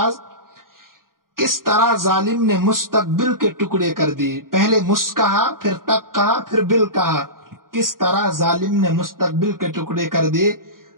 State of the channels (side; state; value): left; late; 0.91 ms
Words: کس طرح ظالم نے مستقبل کے ٹکڑے کر دیے. پہلے مس کہا، پھر تک کہا، پھر بل کہا، کس طرح ظالم نے مستقبل کے ٹکڑے کر دیے.